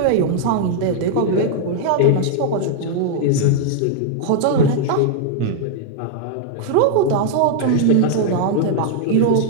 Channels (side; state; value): both; different; correlation 0.00